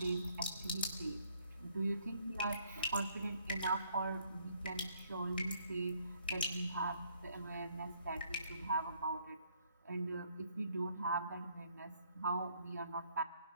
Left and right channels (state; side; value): inverted; both; correlation -0.66